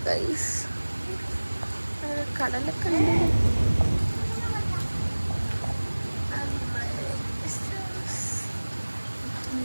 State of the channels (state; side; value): inverted; both; correlation -1.00